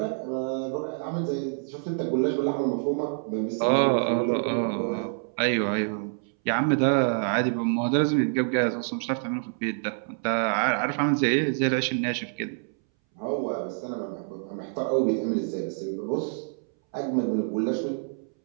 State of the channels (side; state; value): left; silent; 60 dB below the other